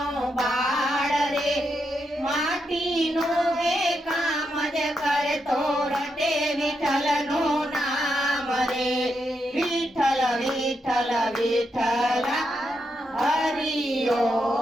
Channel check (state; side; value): normal; both; correlation 0.83